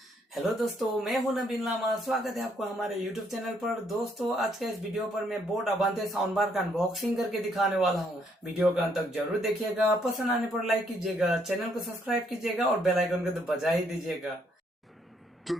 हेलो दोस्तों, मैं हूं नबीनलामा। स्वागत है आपको हमारे यूट्यूब चैनल पर। दोस्तों, आज के इस वीडियो पर मैं बोट अवांते साउंड बार का अनबॉक्सिंग करके दिखाने वाला हूं। वीडियो का अंत तक जरूर देखिएगा। पसंद आने पर लाइक कीजिएगा, चैनल को सब्सक्राइब कीजिएगा और बेल आइकन को तो बजा ही दीजिएगा।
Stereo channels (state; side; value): normal; both; correlation 0.70